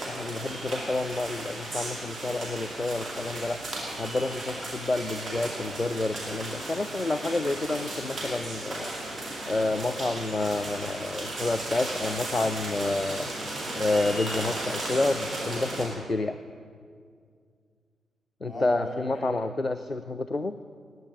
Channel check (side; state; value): both; normal; correlation 0.87